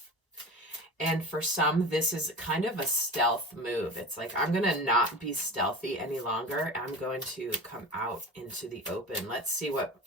And for some, this is kind of a stealth move. It's like, I'm going to not be stealthy any longer. I'm going to come out into the open. Let's see what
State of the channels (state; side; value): normal; both; correlation 0.31